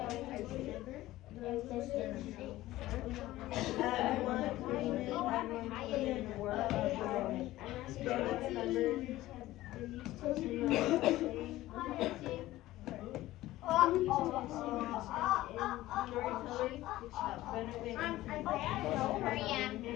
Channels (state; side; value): quieter; right; 16.2 dB